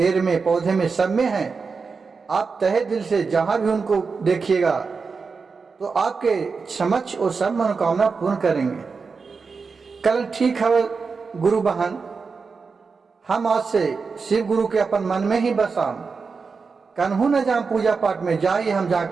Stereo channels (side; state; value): left; quieter; 4.9 dB